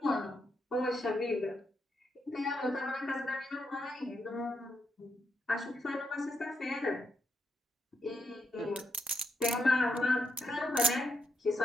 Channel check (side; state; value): both; normal; correlation 0.80